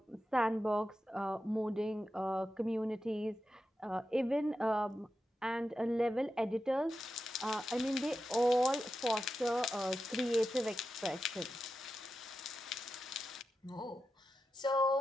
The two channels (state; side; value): normal; both; correlation 0.90